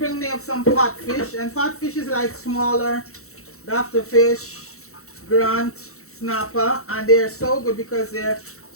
me up some pot fish, and pot fish is like smaller dafter fish, grunt, snapper, and they're so good because they're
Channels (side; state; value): right; late; 0.64 ms